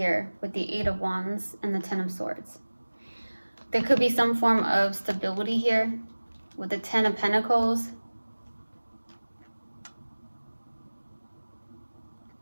with the 8 of Wands and the 10 of Swords. There could be some form of stability here with the 10 of Pentacles.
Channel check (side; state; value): both; inverted; correlation -1.00